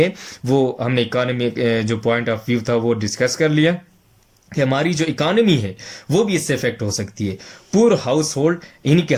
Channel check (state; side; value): identical; both; correlation 1.00